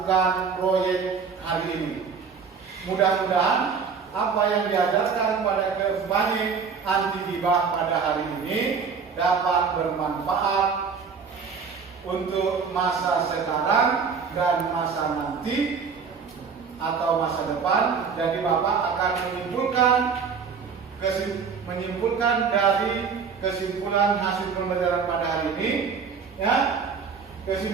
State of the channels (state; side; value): quieter; left; 5.9 dB